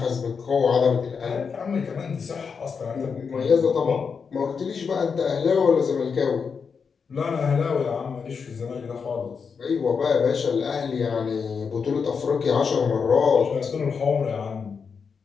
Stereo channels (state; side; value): quieter; right; 5.8 dB